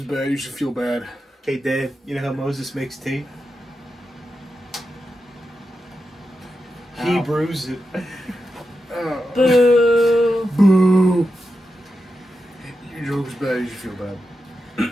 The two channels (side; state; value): both; normal; correlation 0.89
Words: bad. You should feel bad. Hey, Dad, you know how Moses makes tea? He brews it. Boo. Boo. Your joke is bad. You should feel bad.